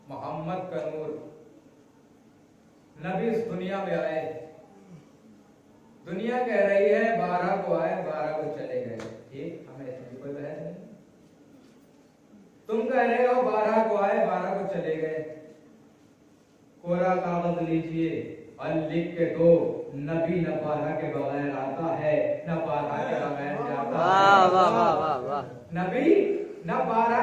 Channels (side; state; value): both; identical; correlation 1.00